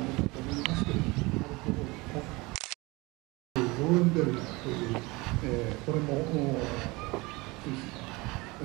のだと思いますけれども、アルコールのローレンベルガーという、これもスイスの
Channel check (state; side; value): quieter; left; 24.0 dB